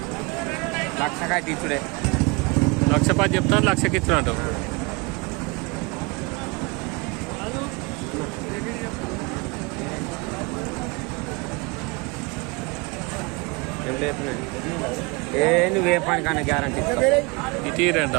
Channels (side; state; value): left; quieter; 27.7 dB